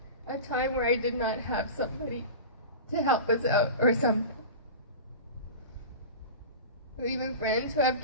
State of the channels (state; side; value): inverted; both; correlation -0.30